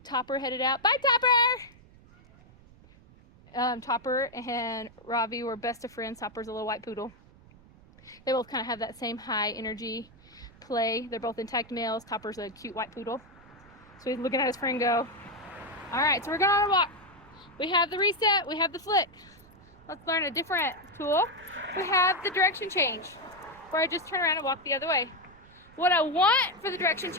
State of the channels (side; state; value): right; noise; rumble, 25 dB below the sound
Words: Topper headed out. Bye, Topper! Topper and Ravi were best of friends. Topper's a little white poodle. They both kind of have that same high energy play. They're both intact males. Topper's a cute white poodle. So he's looking at his friend go. All right, so we're going on a walk. We have the reset, we have the flick. Let's learn a different tool. We have the direction change, where I just turn around and walk the other way. What I want for the direction